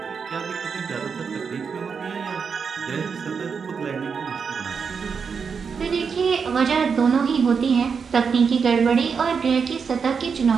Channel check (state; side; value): quieter; left; 5.9 dB